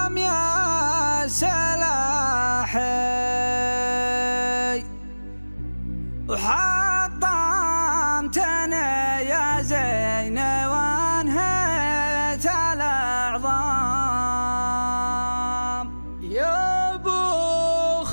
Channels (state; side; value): inverted; both; correlation -1.00